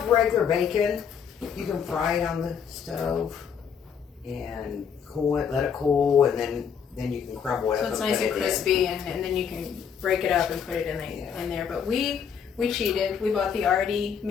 regular bacon, you can fry it on the stove and cool it, let it cool, and then you can crumble it So up it's and nice put and it in. crispy, and then you can break it up and put it in Yeah. there. But we we cheated. We bought the already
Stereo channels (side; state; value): right; quieter; 7.3 dB